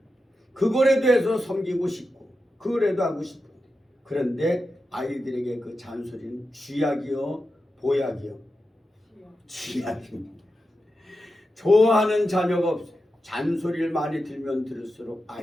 그거라도 해서 섬기고 싶고 그거라도 하고 싶고. 그런데 아이들에게 그 잔소리는 쥐약이요? 보약이요? 쥐약입니다. 좋아하는 자녀가 없어요. 잔소리를 많이 들면 들을수록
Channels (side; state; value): both; normal; correlation 0.90